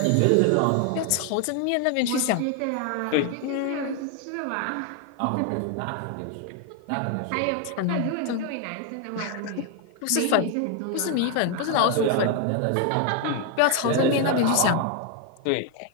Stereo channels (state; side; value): different; both; correlation 0.00